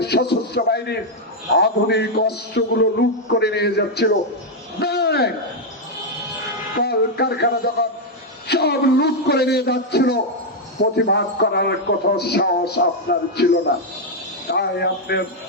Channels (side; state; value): both; normal; correlation 0.00